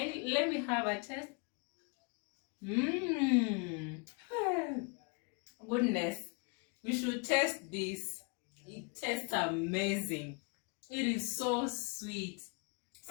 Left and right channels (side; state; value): right; quieter; 33.9 dB